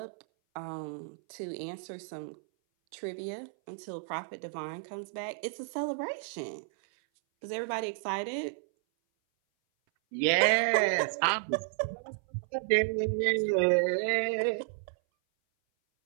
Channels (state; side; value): silent; left; 56 dB below the other